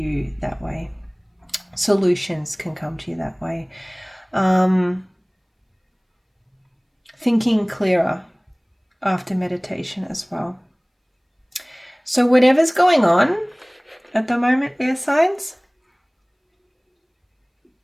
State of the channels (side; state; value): both; identical; correlation 1.00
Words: that way. Solutions can come to you that way. Thinking clearer after meditation as well. So whatever's going on at the moment, air signs,